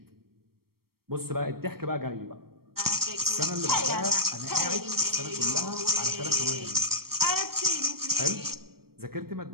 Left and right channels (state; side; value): late; left; 0.94 ms